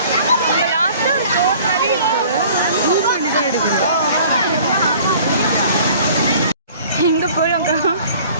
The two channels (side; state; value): both; inverted; correlation -0.50